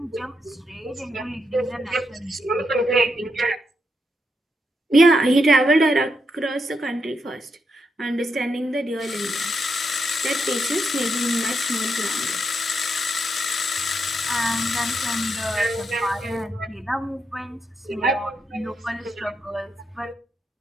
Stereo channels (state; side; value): normal; both; correlation 0.82